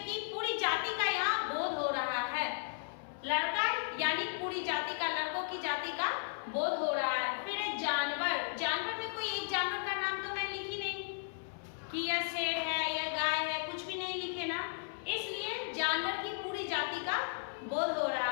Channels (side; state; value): right; silent; 54 dB below the other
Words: की पूरी जाति का यहाँ बोध हो रहा है। लड़का यानी पूरी जाति का, लड़कों की जाति का बोध हो रहा है। फिर जानवर। जानवर में कोई एक जानवर का नाम तो मैं लिखी नहीं कि यह शेर है या गाय है, कुछ भी नहीं लिखे ना, इसलिए जानवर की पूरी जाति का बोध हो